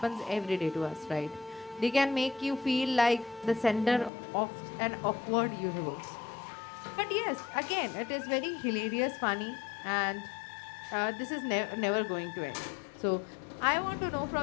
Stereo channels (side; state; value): right; drops out; at 4.1 s